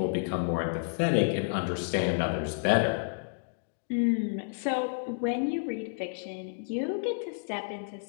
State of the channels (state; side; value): silent; right; digital silence